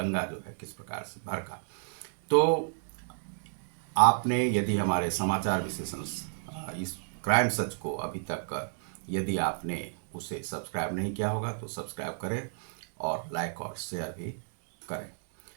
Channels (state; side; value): silent; left; digital silence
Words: जो है किस प्रकार से भड़का। तो आपने यदि हमारे समाचार विश्लेषण इस क्राइम सच को अभी तक यदि आपने उसे सब्सक्राइब नहीं किया होगा तो सब्सक्राइब करें और लाइक और शेयर भी करें।